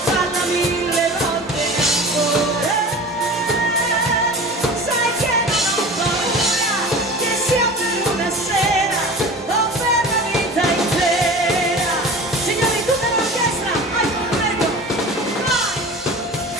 falla 1000 volte ancora. Sai che non ho paura, che sia per una sera o per la vita intera. Signori, tutta l'orchestra, vai, prego, vai!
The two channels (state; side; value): normal; both; correlation 0.36